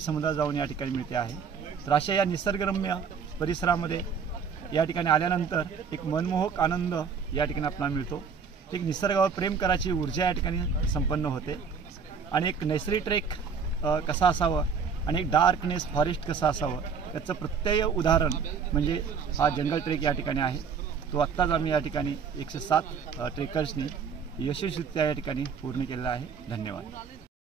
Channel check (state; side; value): quieter; left; 6.1 dB